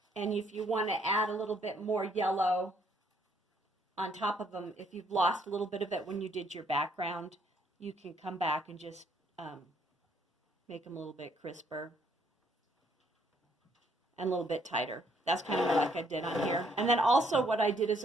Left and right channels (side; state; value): both; normal; correlation 0.68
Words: and if you want to add a little bit more yellow on top of them, if you've lost a little bit of it when you did your background, you can come back and just make them a little bit crisper and a little bit tighter. That's kind of like I did on here. And then also what I did is